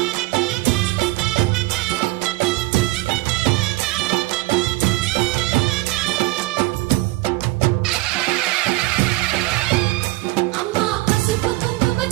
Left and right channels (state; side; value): quieter; left; 19.8 dB